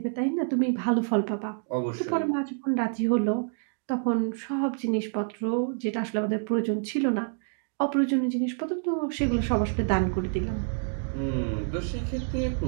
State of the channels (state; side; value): silent; left; 60 dB below the other